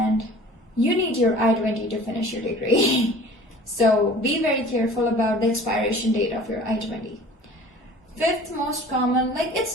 you need your I-20 to finish your degree. So be very careful about the expiration date of your I-20. Fifth most common, like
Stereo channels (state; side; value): normal; both; correlation 0.46